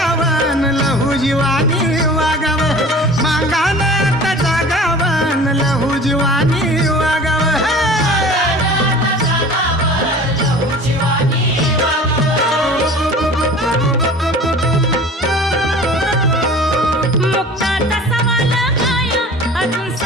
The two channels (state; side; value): normal; both; correlation 0.42